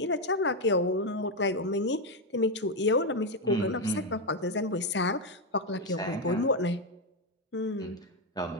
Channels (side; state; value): both; normal; correlation 0.06